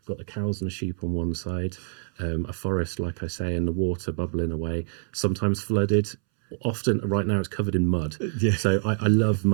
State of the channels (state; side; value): silent; left; 61 dB below the other